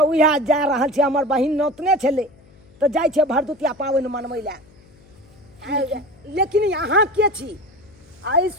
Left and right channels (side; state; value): left; noise; hum, 27 dB below the sound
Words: जा रहल छी। हमर बहिन नोतने छलै तऽ जाइ छै भरदुतिया पाबनि मनबै लए। लेकिन यहाँ के छी? आइ